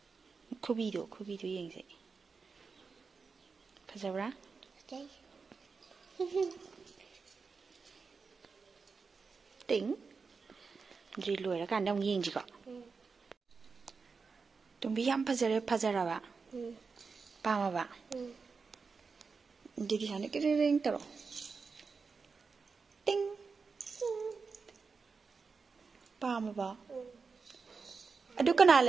Kubido yengse. Fazabra? Okay. Ting. Drilu era kan dong yeng jiko. Tumbi yam fazara ba. Pama ba. Jadi sana kering tero. Ting. Pama ba. Adu kana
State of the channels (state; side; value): quieter; left; 4.9 dB